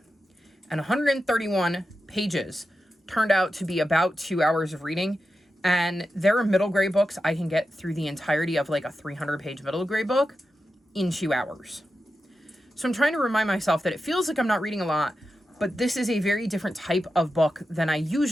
And 131 pages turned out to be about 2 hours of reading. And there are middle grade books I can get through the entirety of like a 300-page middle grade book in 2 hours. So I'm trying to remind myself that it feels like I'm not reading a lot, but this is a very different type of book than I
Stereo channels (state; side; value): normal; both; correlation 0.91